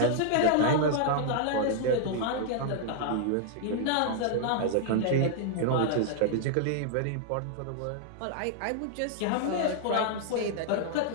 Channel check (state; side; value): different; both; correlation -0.01